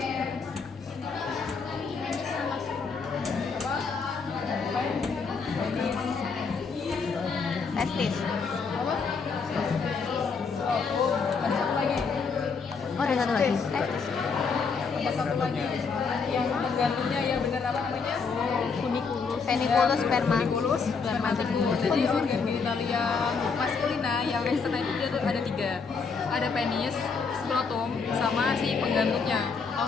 Testis. Apa? Oh, ada satu lagi. Oh, ada satu lagi. Testis. Ada satu lagi. Yang penggantungnya ya benar apa namanya? Peniculus sperma. Peniculus spermaticus. Jadi organ genitalia maskulina yang eksternal itu dia tuh ada 3. Ada penis, skrotum, sama si penggantungnya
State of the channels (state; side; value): quieter; right; 5.2 dB